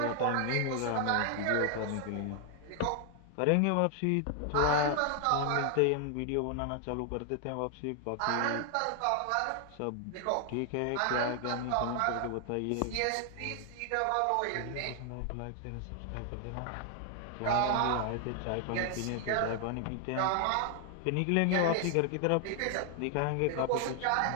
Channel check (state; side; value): different; both; correlation 0.00